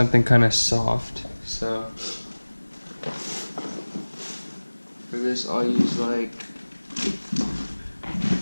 kind of soft. So for this, I'll use like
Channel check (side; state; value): both; inverted; correlation -1.00